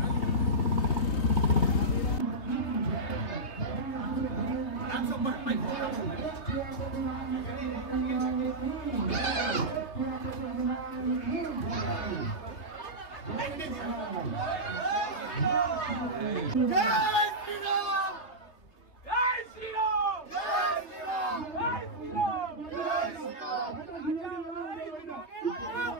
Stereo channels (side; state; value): right; late; 3.3 ms